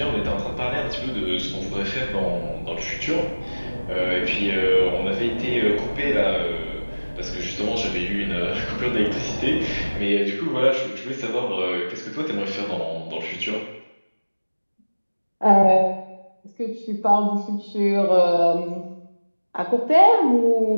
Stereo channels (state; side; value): inverted; both; correlation -1.00